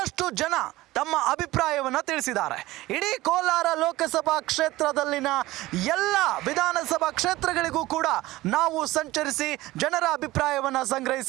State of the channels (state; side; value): quieter; left; 18.0 dB